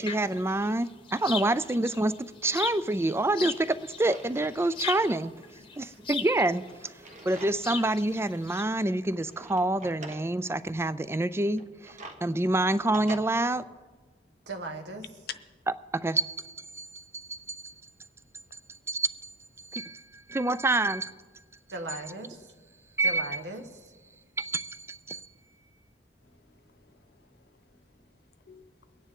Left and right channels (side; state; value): both; normal; correlation 0.59